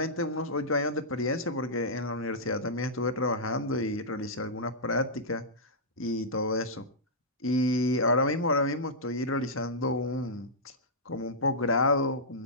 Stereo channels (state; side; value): normal; both; correlation -0.12